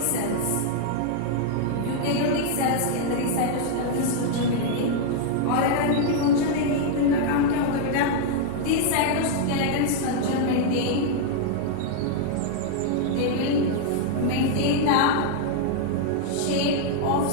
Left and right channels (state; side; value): different; both; correlation -0.01